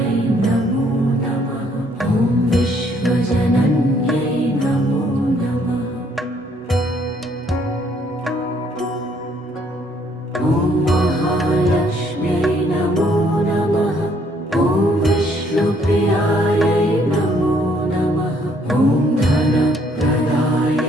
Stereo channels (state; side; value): normal; both; correlation 0.66